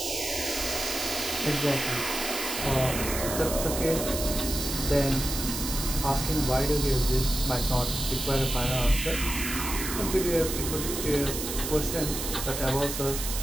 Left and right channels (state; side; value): noise; right; hiss, 5 dB below the sound